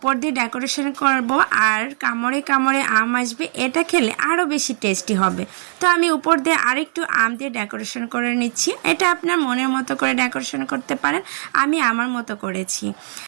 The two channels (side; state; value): left; silent; 58 dB below the other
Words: দিয়ে ডেকোরেশন করব আর কামড়ে কামড়ে আম আসবে, এটা খেলে আরও বেশি টেস্টি হবে। তো আমি উপর দিয়ে আরেকটু আম দিয়ে ডেকোরেশন করে নিচ্ছি। এটা আপনার মনের মতো করে ডেকোরেশন করতে পারেন, আমি আমার মতো করেছি।